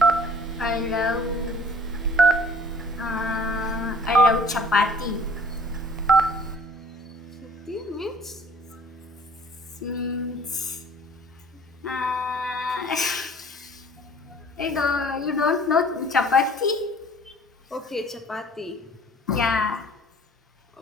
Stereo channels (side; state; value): both; normal; correlation 0.53